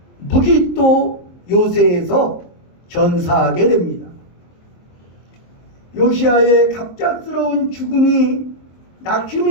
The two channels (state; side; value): late; right; 23 ms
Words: 무기또 요새에서 전사하게 됩니다. 요시야의 갑작스러운 죽음이